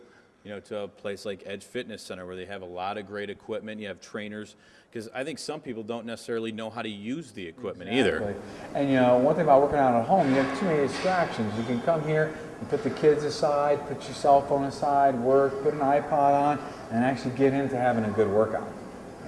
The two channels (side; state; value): both; identical; correlation 1.00